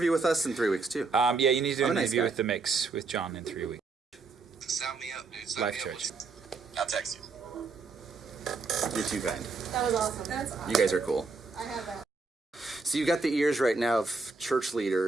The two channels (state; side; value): quieter; left; 4.2 dB